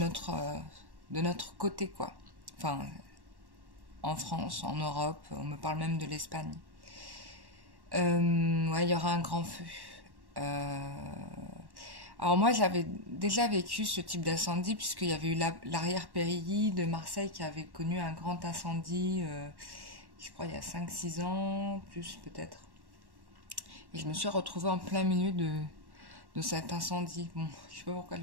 côté quoi. Enfin, en France, en Europe, on me parle même de l'Espagne. Ouais, il y aura un grand feu. Euh, Alors moi, j'avais déjà vécu ce type d'incendie puisqu'il y avait eu l'arrière-périlly de Marseille qui avait connu un grand incendie, je crois il y a 5 6 ans, plus peut-être. Et je me suis retrouvée en plein milieu de cet incendie. Bon, je sais pas pourquoi je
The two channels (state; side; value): late; left; 1.1 ms